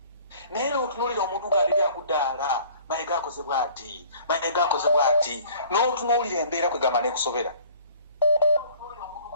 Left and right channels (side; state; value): both; inverted; correlation -0.52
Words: naye n'otunulira omuntu ng'alibya akuddaala mayiga akozebwa ati n'otunuulira embeera kwegamba n'ekusobera